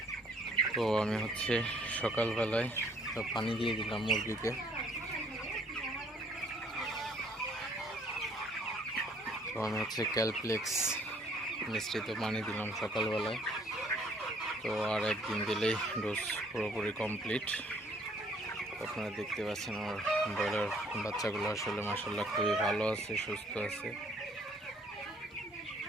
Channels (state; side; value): normal; both; correlation 0.62